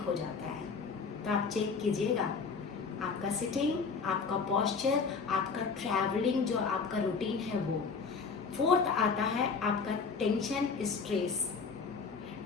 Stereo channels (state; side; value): quieter; right; 5.1 dB